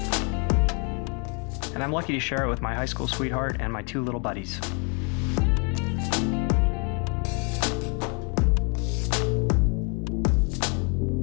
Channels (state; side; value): quieter; right; 35.9 dB